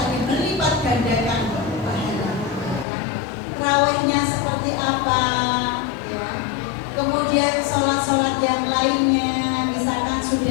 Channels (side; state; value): right; drops out; at 2.9 s